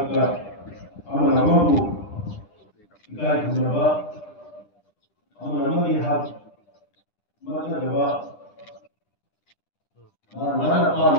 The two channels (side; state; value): right; late; 10 ms